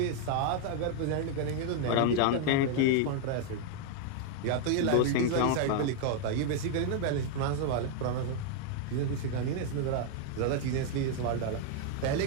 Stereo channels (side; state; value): both; different; correlation 0.00